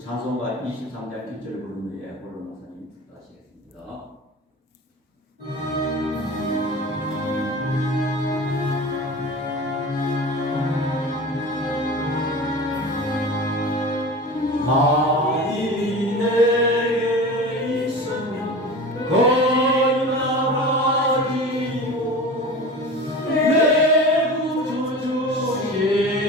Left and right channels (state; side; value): normal; both; correlation 0.34